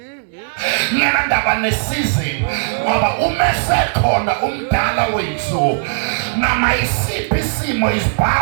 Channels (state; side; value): silent; left; digital silence